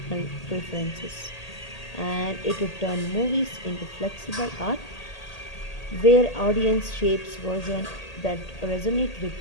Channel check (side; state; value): right; late; 1.8 ms